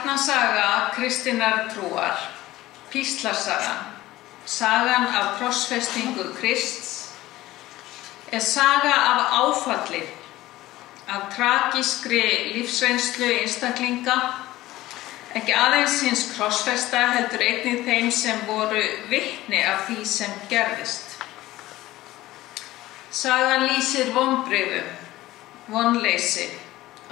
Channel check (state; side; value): quieter; right; 16.7 dB